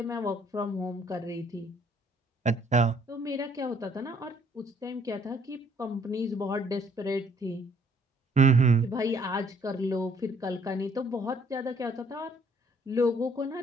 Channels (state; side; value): normal; both; correlation 0.63